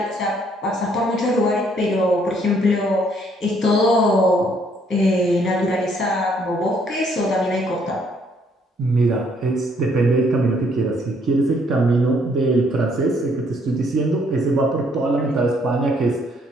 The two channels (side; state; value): both; normal; correlation 0.67